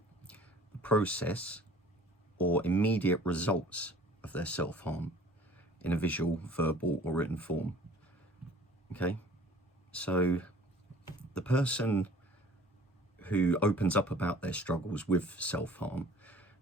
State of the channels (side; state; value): both; normal; correlation 0.49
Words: the process or immediate results of their self-harm in a visual, verbal or written form. Okay, so the person who opens up about their struggles with self-harm